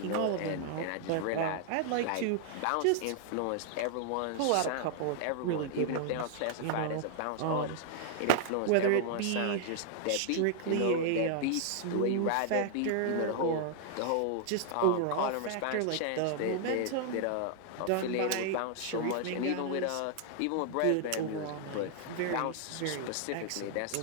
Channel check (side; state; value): both; different; correlation 0.00